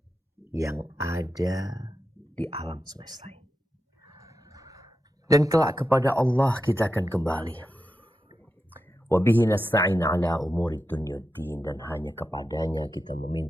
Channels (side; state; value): both; normal; correlation 0.89